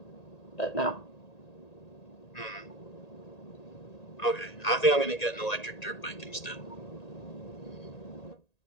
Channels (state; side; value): late; right; 1.8 ms